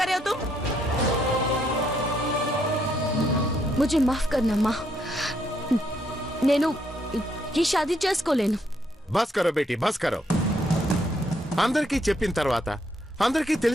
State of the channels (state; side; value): normal; both; correlation 0.73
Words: रहे हो तुम? मुझे माफ करना अम्मा. నేను ఈ షాదీ చేసుకోలేను. బస్ కరో బేటీ, బస్ కరో. అందరికీ చెప్పిన తర్వాత, అందరికీ